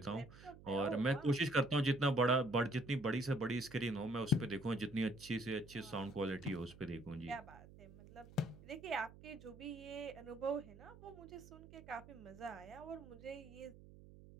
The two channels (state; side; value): noise; right; hum, 19 dB below the sound